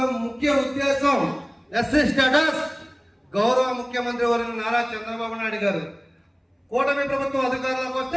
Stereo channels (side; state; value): both; identical; correlation 1.00